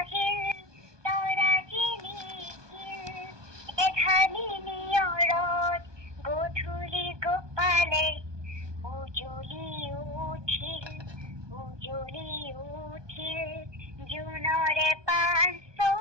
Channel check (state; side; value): late; left; 1.2 ms